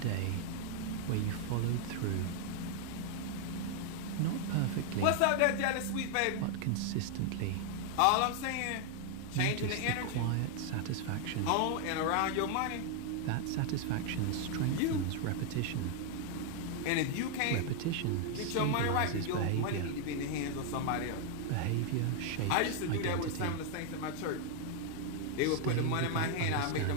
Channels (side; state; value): both; different; correlation 0.00